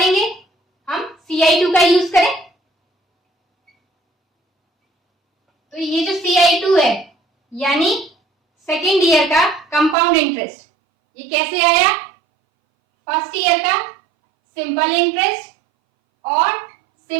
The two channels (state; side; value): drops out; left; at 10.0 s